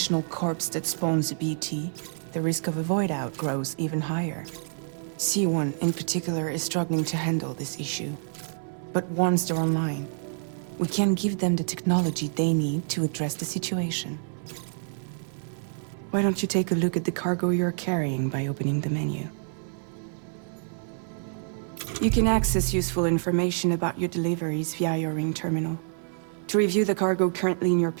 corpse that spawns a BT, the risk of a void out grows even higher. C1 in particular is struggling to handle this issue. But once they're online, we can give them the technology they need to address the situation. Why don't you take a look at the cargo you're carrying by opening the menu? You can access useful information about your deliveries via your ring terminal. To review the cargo currently in your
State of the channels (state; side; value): silent; left; 60 dB below the other